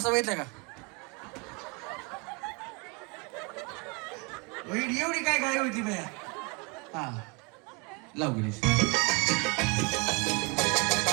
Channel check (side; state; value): left; quieter; 30.7 dB